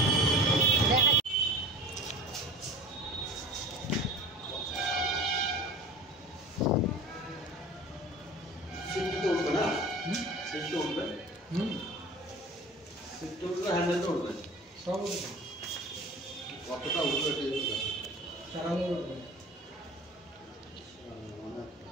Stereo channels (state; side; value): normal; both; correlation 0.40